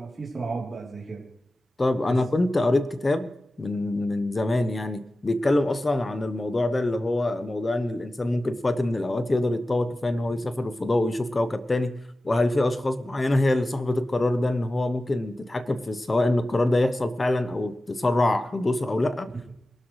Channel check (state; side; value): normal; both; correlation 0.95